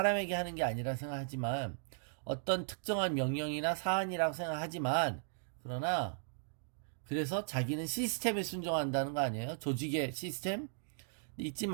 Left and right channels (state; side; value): silent; left; digital silence